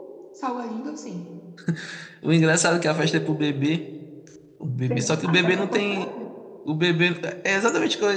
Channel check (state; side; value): identical; both; correlation 1.00